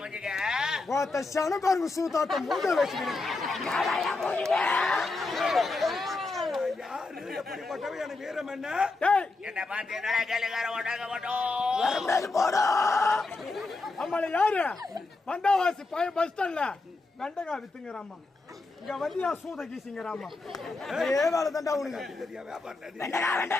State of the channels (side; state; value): right; quieter; 3.5 dB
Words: ஒருத்த சனக்காரங்க சூத்தாட்ட மூஞ்ச வச்சுக்கிறேன். யாரு எப்படிப்பட்டவன் எனக்கு வீரம் என்ன? என்ன பார்த்து என்னடா கேளுக்கார ஓட்டாங்க அம்மால யாரு? வந்தாவாசி பஸ் ஸ்டாண்ட்ல வெண்டைக்காய் வித்துங்கிறாமா. இங்க வந்தியா சூத கீசிங்கிறாமா. ஏ வேலை தாண்டா உனக்கு.